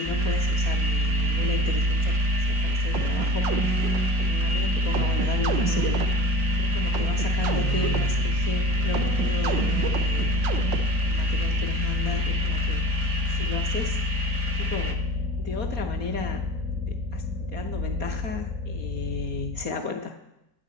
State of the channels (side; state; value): left; late; 5.0 ms